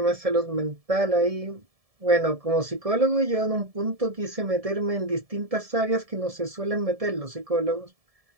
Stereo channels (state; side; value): late; left; 1.7 ms